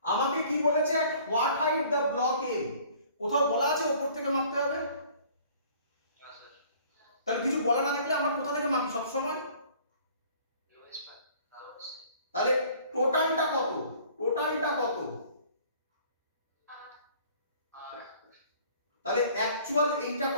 আমাকে কি বলেছে, at what height the block M, কোথাও বলা আছে উপর থেকে মাপতে হবে? তাহলে কিছু বলা না থাকলে আমরা কোথা থেকে মাপি সব সময়? তাহলে টোটালটা কত? টোটালটা কত? তাহলে অ্যাকচুয়াল এইটা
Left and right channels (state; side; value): inverted; both; correlation -0.53